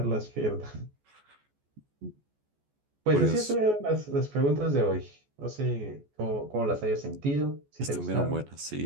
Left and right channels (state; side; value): late; left; 14 ms